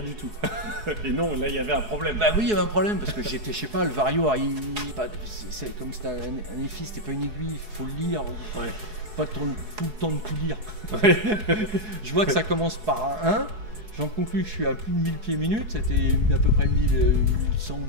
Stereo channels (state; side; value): late; left; 4.7 ms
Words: du tout. Et non, là il y avait un problème. Bah oui, il y avait un problème parce que j'étais, je sais pas, le Vario, c'est comme c'était un EFI, c'était pas une aiguille, faut le lire, Ouais. pas tout le temps de tout lire. Ouais. Je vois que ça commence par un 1, j'en conclus que je suis à plus de 1000 pieds minutes, c'était à peu près 1100,